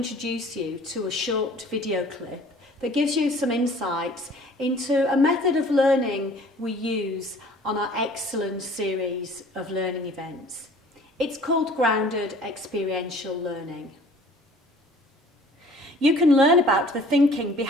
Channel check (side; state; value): both; normal; correlation 0.51